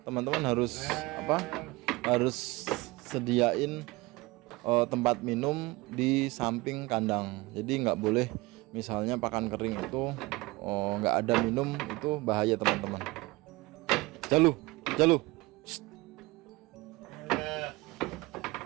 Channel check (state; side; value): quieter; left; 22.0 dB